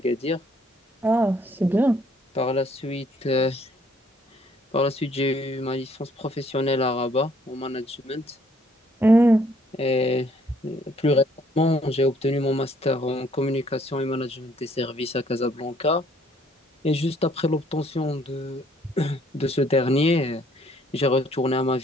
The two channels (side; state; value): both; normal; correlation 0.64